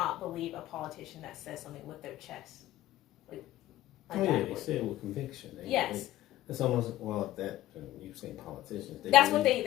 believe a politician that says something with their chest? They say it with conviction. Yes. It's almost, you say politicians. That's what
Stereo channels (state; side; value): quieter; right; 14.6 dB